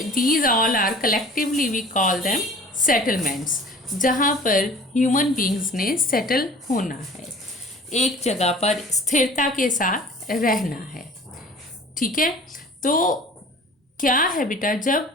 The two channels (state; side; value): normal; both; correlation 0.45